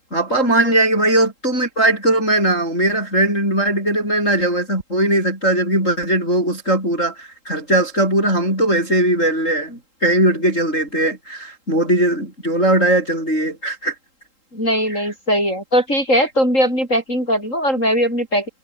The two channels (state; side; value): late; right; 3.8 ms